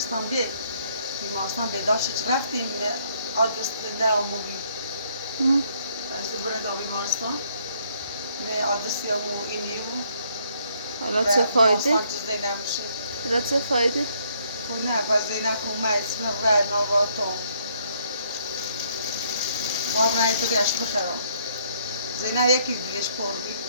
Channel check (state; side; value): inverted; both; correlation -0.68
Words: بیمارستان بیداشت رفتیم آدرس نه آموزی از بریم تا بیمارستان نه آدرسی همون اینی بود حالا چه فایده؟ بیمارستان چیز نمیشه حالا چه فایده؟ خب نه پس زینه کنم اسم رای نواتم باب رای تو بیاش بخرم زینه یکی دلش پر بی